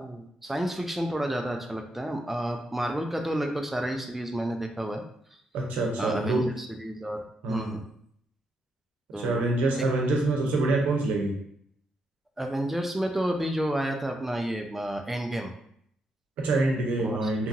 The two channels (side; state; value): both; normal; correlation 0.80